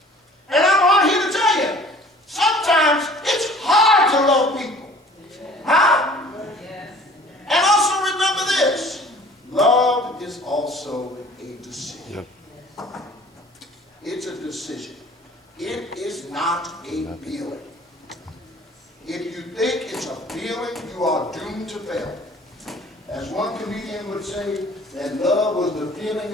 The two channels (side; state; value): both; normal; correlation 0.49